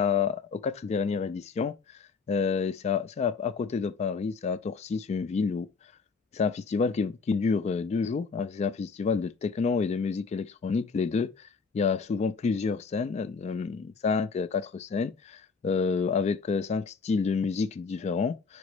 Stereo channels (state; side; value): quieter; right; 5.0 dB